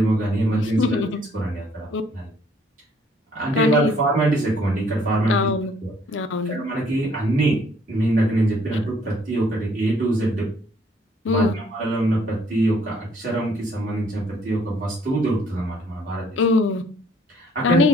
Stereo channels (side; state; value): both; normal; correlation 0.63